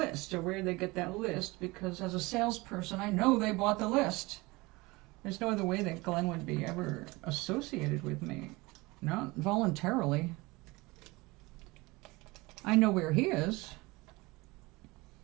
or where they get that list, because as a salesperson, I know they bought the list. There's no other way that Glenn would be ever associated with me. Not voluntarily. I know where he is,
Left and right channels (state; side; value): quieter; left; 23.1 dB